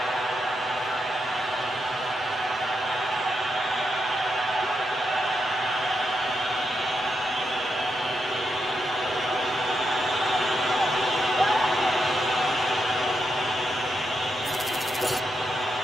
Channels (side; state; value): both; normal; correlation 0.83